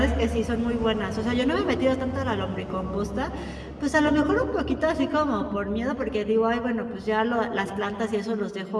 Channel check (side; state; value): both; identical; correlation 1.00